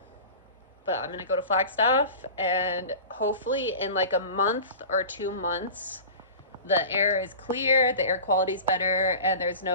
I'm gonna go to Flagstaff, and hopefully in like a month or 2 months, the air is clear, the air quality is better, and there's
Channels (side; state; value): both; inverted; correlation -0.35